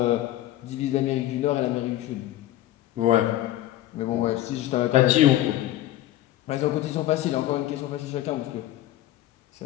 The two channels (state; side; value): quieter; right; 14.2 dB